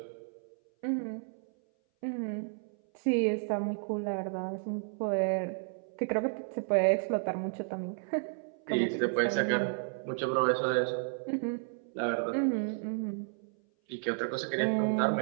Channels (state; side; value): silent; left; 56 dB below the other